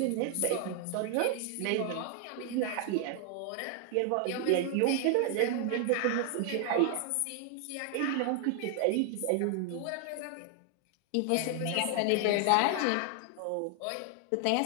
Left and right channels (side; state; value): both; different; correlation 0.00